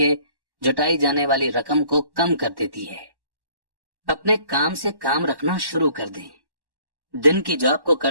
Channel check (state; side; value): late; left; 1.1 ms